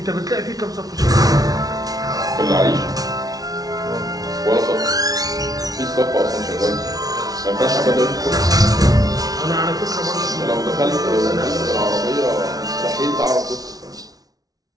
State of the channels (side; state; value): left; late; 0.18 ms